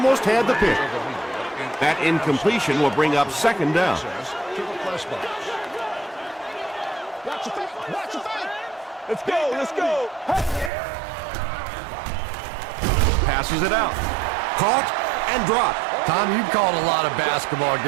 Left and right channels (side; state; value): left; drops out; at 10.7 s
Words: had the pick. That incompletion will bring up second down. Let's go, let's go. Passes it out. Caught and dropped. Tom, you called a lot of basketball